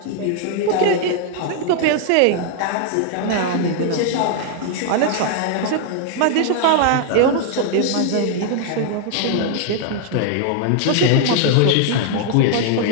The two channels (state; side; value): different; both; correlation 0.00